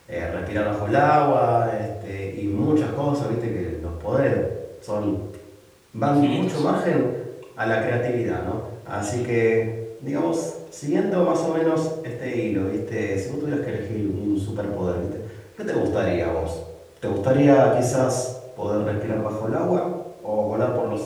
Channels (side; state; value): both; identical; correlation 1.00